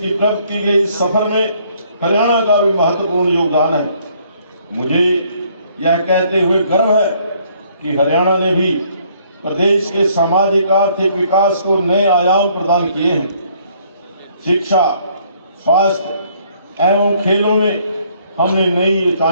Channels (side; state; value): both; inverted; correlation -0.64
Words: प्रगति के इस सफर में हरियाणा का भी महत्वपूर्ण योगदान है। मुझे यह कहते हुए गर्व है कि हरियाणा ने भी प्रदेश के सामाजिक आर्थिक विकास को नए आयाम प्रदान किए हैं। शिक्षा, स्वास्थ्य एवं खेलों में हमने नई